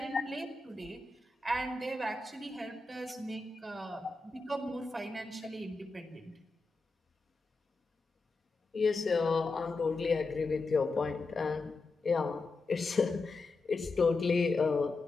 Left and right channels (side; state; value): right; quieter; 3.5 dB